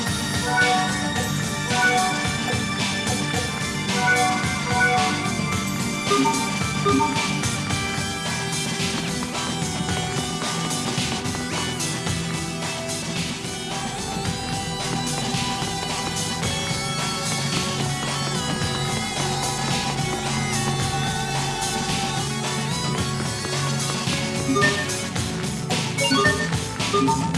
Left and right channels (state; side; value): identical; both; correlation 1.00